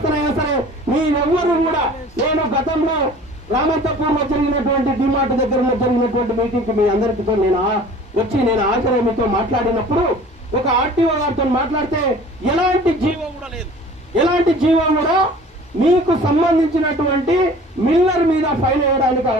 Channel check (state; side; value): normal; both; correlation 0.46